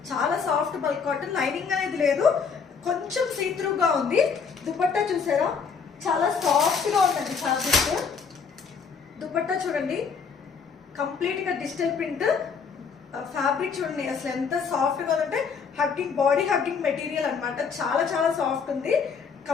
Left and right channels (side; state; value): right; quieter; 5.9 dB